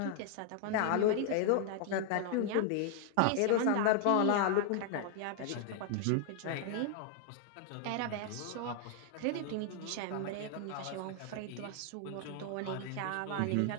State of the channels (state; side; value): different; both; correlation 0.00